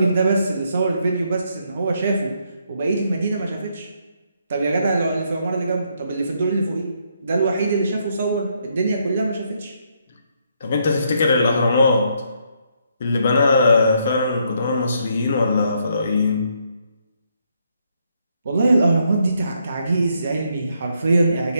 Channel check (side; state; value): both; inverted; correlation -0.74